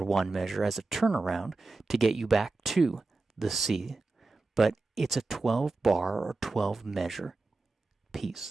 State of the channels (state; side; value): quieter; left; 3.5 dB